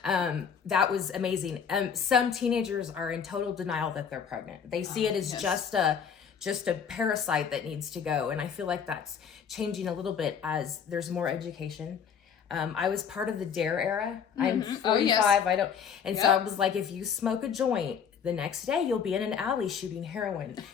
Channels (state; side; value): quieter; right; 7.3 dB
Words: That was amazing. Some teenagers are in total denial that they're pregnant. They see it as just a parasite that needs to go. And I feel like that's changing a little bit as there's more education. I was part of the DARE era. I'm 45. So I was like, if you smoke a joint, the next day you'll be in an alley shooting heroin.